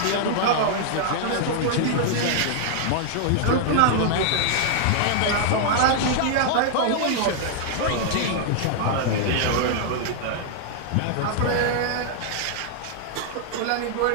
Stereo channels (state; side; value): different; both; correlation -0.01